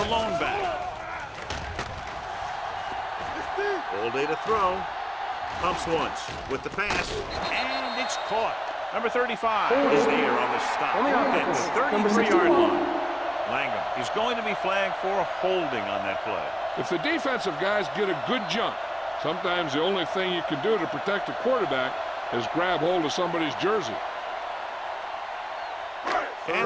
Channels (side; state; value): both; identical; correlation 1.00